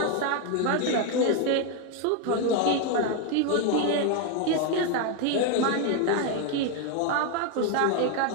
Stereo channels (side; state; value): both; different; correlation 0.01